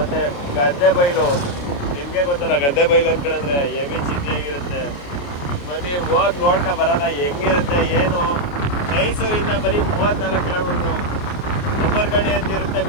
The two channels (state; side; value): late; right; 28 ms